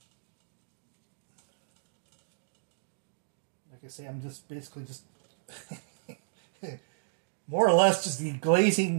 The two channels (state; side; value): silent; left; digital silence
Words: like I say, I'm just basically just more or less just